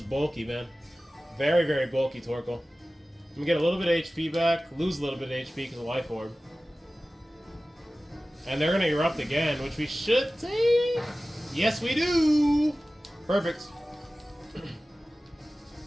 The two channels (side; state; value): both; normal; correlation 0.96